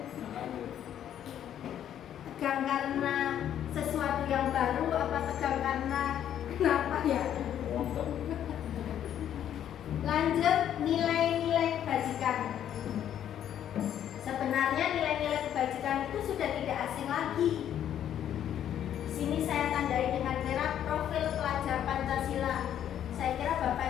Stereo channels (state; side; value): quieter; right; 10.3 dB